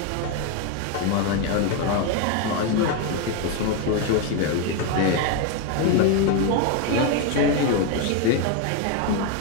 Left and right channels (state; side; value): different; both; correlation 0.02